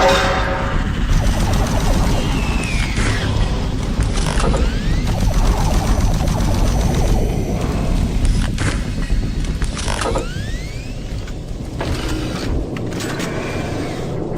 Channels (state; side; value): identical; both; correlation 1.00